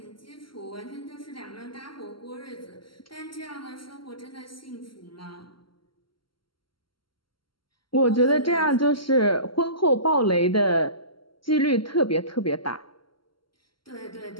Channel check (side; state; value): right; late; 0.73 ms